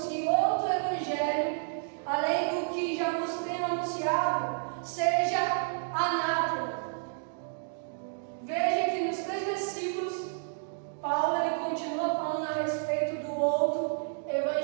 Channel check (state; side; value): silent; left; digital silence